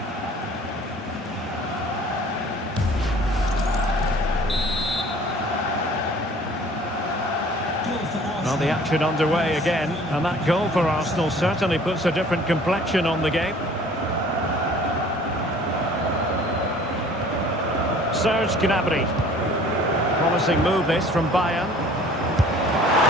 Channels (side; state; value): both; normal; correlation 0.51